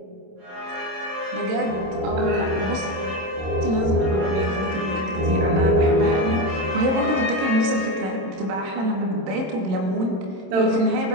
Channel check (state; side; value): late; left; 26 ms